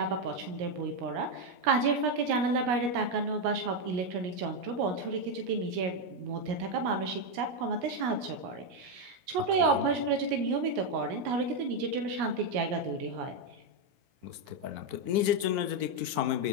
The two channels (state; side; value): late; left; 17 ms